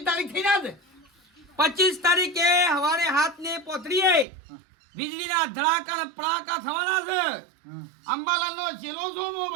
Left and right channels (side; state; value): left; drops out; at 4.2 s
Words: તારીખ થઈ ના 25 તારીખે સવારે 7 ને પોતરીએ વીજળીના ધડાકા ને પડાકા થવાના છે હમ. અંબાલાલનો છેલ્લો સોમો